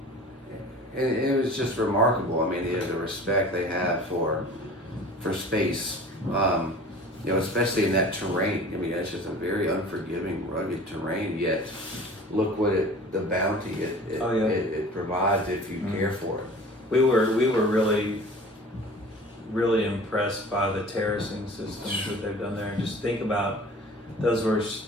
And it was just remarkable. I mean, the respect they have for space. Especially in that terrain. I mean, it's just a very unforgiving, rugged terrain. Yet, look what the bounty it provides if you care for it. We were really, really impressed by the terracing systems that they've done there. And just think about those were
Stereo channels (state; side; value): normal; both; correlation 0.43